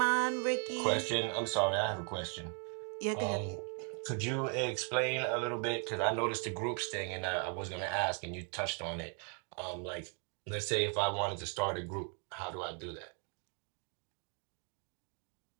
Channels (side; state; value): left; quieter; 38.5 dB